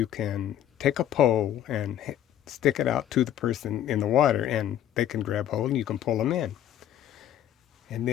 can take a pole and stick it out to the person in the water, and they can grab hold, and you can pull them in. And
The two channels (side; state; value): right; quieter; 11.2 dB